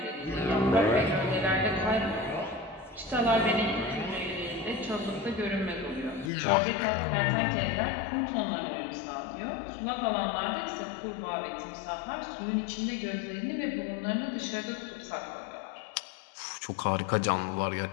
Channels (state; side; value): drops out; right; at 6.3 s